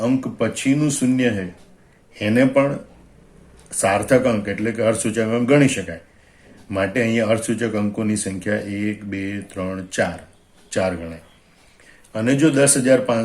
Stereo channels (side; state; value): both; identical; correlation 1.00